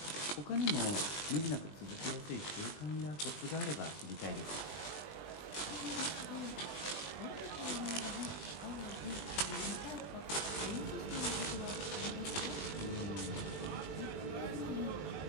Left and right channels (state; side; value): late; right; 20 ms